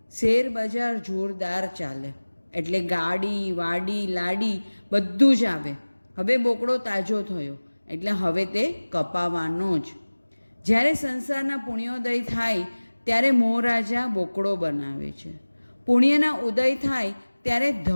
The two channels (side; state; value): both; inverted; correlation -1.00